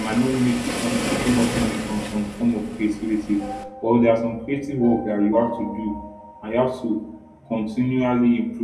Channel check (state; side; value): identical; both; correlation 1.00